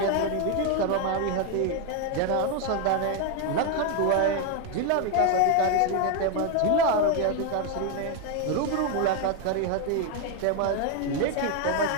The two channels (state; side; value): different; both; correlation 0.01